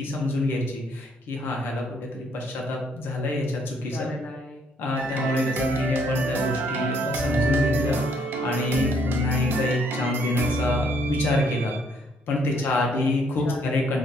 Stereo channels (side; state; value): both; normal; correlation 0.68